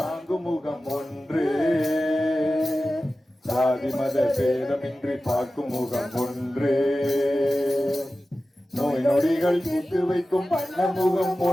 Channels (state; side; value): normal; both; correlation 0.95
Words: முகம் ஒன்று, சாதி மத பேதமின்றி பார்க்கும் முகம் ஒன்று. நோய் நொடிகள் தீர்த்து வைக்கும் வண்ண முகம்